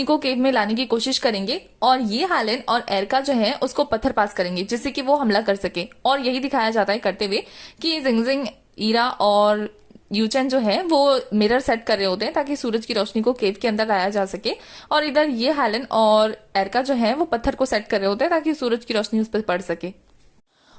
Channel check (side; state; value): both; identical; correlation 1.00